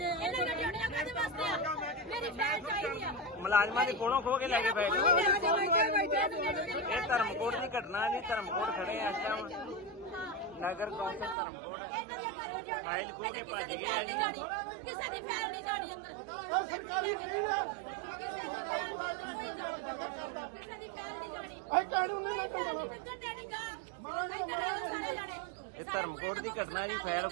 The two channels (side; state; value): left; drops out; at 11.4 s